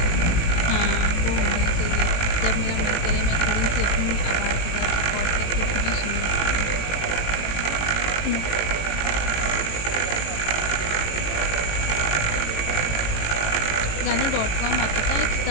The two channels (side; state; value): right; late; 18 ms